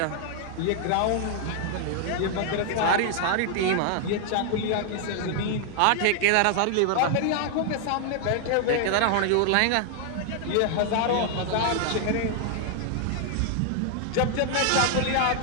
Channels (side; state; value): both; different; correlation 0.00